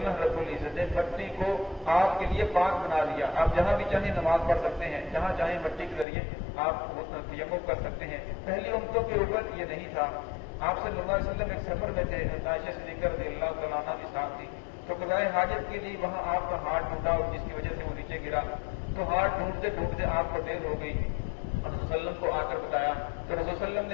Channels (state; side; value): drops out; right; at 6.1 s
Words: رب العزت نے مٹی کو آپ کے لیے پاک بنا دیا. آپ جہاں بھی چاہیں نماز پڑھ سکتے ہیں، جہاں چاہیں مٹی کے ذریعے آپ تیمم کر سکتے ہیں. پہلی امتوں کے اوپر یہ نہیں تھا. آپ صلی اللہ علیہ وسلم ایک سفر میں تھے، عائشہ صدیقہ رضی اللہ تعالیٰ عنہ بھی ساتھ تھی، تو قضائے حاجت کے لیے وہاں آپ کا ہاتھ ٹوٹا اور جس کی وجہ سے وہ نیچے گرا، تو ہاتھ ڈھونڈتے ڈھونڈتے آپ کو دیر ہو گئی. رسول صلی اللہ علیہ وسلم کو آ کر بتایا تو رسول صلی اللہ علیہ وسلم